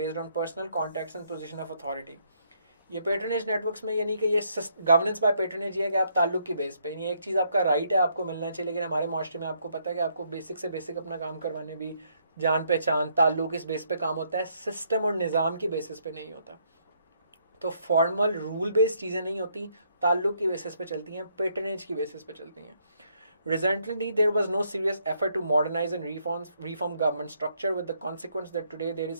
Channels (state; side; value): inverted; both; correlation -0.71